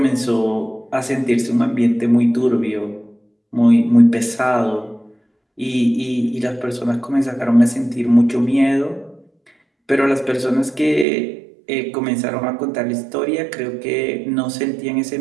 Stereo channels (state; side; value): drops out; left; at 11.1 s